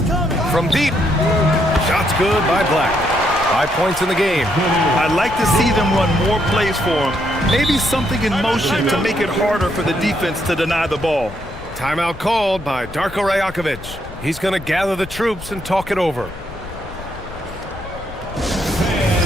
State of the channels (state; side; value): noise; left; rumble, 15 dB below the sound